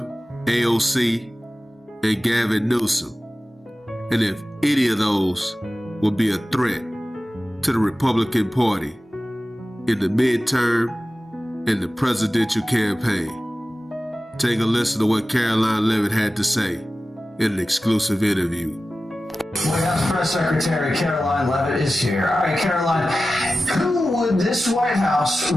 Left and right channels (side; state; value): both; normal; correlation 0.95